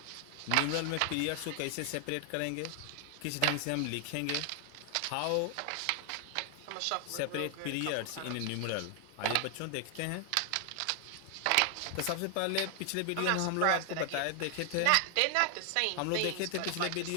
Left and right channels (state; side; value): different; both; correlation 0.00